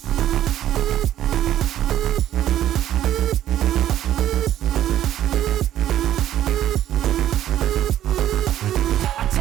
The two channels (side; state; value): left; quieter; 12.1 dB